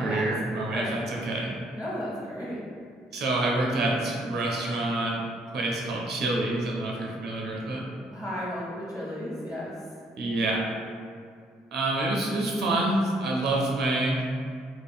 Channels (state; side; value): normal; both; correlation 0.66